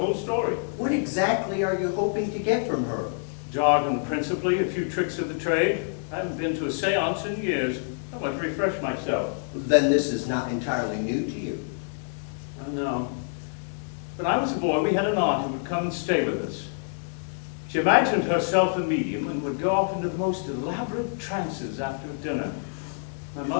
story. What exactly are you hoping to get from her? Jargon principally, a few tricks of the trade. I haven't been to a séance in years. I want to refresh myself. Then this is not entirely new to you. I know. When I was a boy, we had an aunt who would come and stay with us. She imagined herself a medium and would go off into the most elaborate trances after dinner. My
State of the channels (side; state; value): right; silent; digital silence